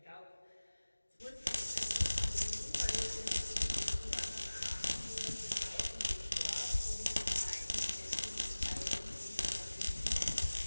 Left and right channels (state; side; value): inverted; both; correlation -1.00